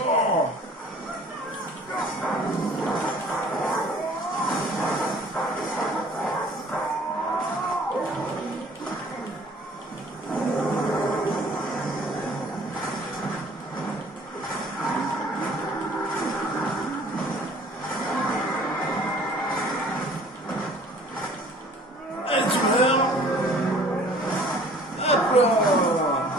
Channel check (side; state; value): both; normal; correlation 0.52